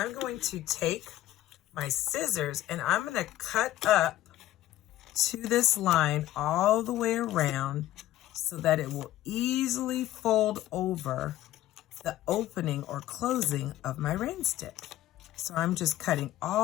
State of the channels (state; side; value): quieter; right; 14.4 dB